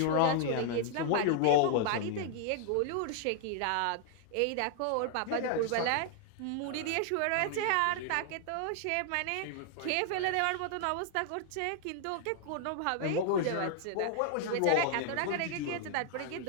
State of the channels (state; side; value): different; both; correlation 0.00